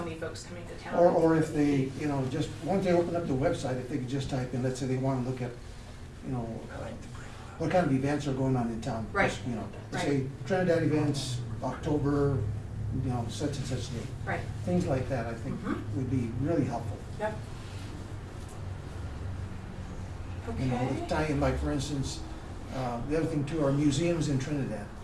folks coming to town. Or if they, you know, just, once they open up the website, if they could just type in, let's say they want to look at, you know, what kind of events are going on in town. Right. Just, you know, Right. say Trinidad events, October, you know, such and such date. Right, Things like that, I think, Mhm. would be really helpful. yep. You know, Okay, tie in, like, for instance, the other thing too, are museums in Trinidad.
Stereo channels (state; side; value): identical; both; correlation 1.00